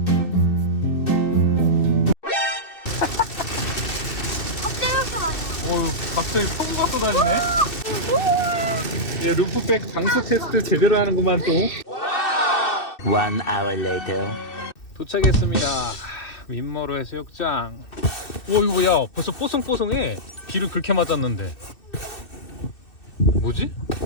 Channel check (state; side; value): late; right; 2.6 ms